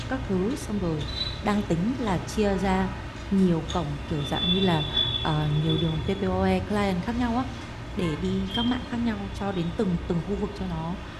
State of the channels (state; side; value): identical; both; correlation 1.00